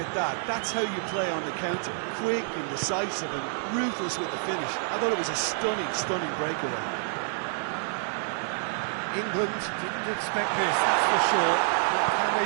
that, that's how you play on the counter. Quick and decisive and ruthless with the finish. I thought it was a stunning, stunning breakaway. England didn't expect this, that's for sure. What can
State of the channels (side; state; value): left; silent; digital silence